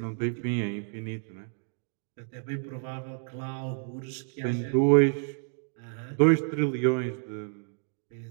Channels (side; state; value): left; silent; 58 dB below the other